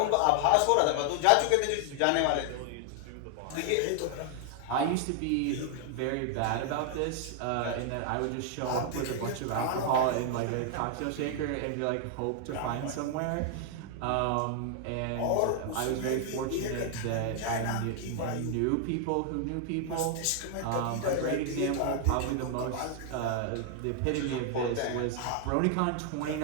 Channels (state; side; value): different; both; correlation 0.00